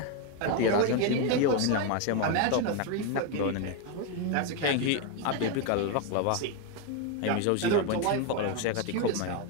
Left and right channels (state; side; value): different; both; correlation 0.02